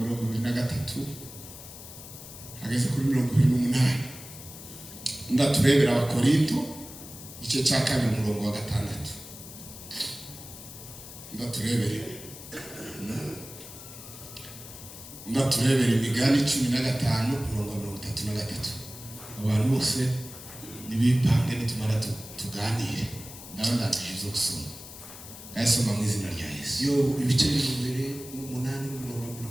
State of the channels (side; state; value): left; noise; hiss, 14 dB below the sound